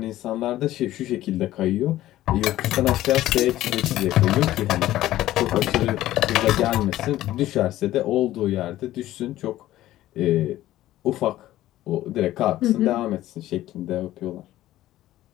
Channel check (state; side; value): quieter; right; 14.6 dB